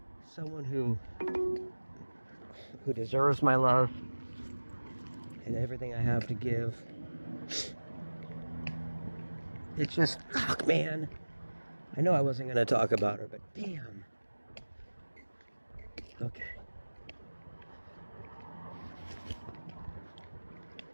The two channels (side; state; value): both; inverted; correlation -1.00